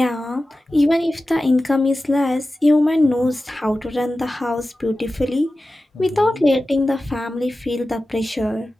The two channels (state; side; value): normal; both; correlation 0.95